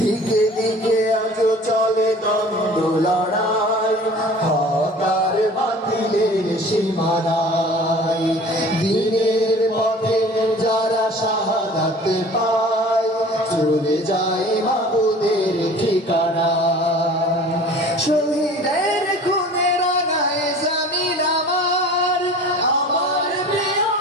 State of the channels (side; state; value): both; normal; correlation 0.44